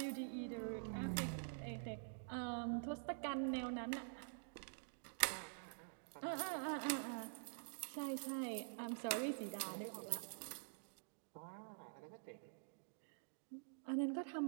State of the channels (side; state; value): left; silent; digital silence